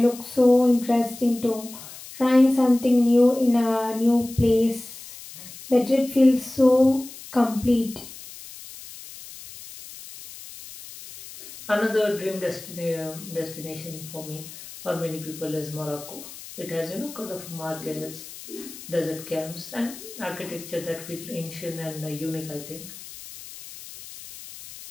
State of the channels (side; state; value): left; noise; hiss, 15 dB below the sound